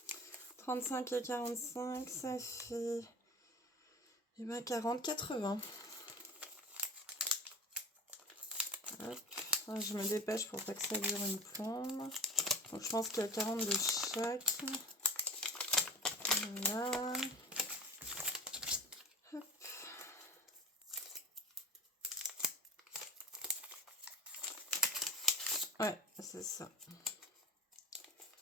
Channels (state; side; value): normal; both; correlation 0.36